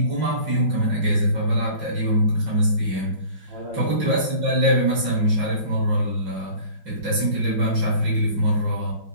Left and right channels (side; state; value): left; late; 5.5 ms